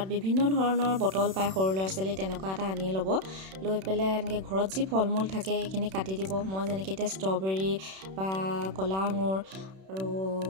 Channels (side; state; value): left; late; 31 ms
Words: বিভিন্ন ধৰণৰ বটল পায় সৰু ল'ৰা ছোৱালী, তেনেকুৱা এটা আনি ল'ব। লৈ পেলাই এনেকৈ ঘৰত যি ফল মূল থাকে সেইখিনি কাটি দিব। মই যেনেকৈ এতিয়া ষ্ট্ৰবেৰী বা কলা আঙুৰ আৰু